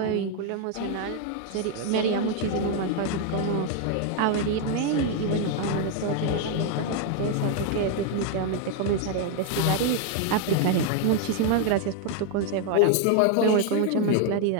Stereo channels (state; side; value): different; both; correlation 0.01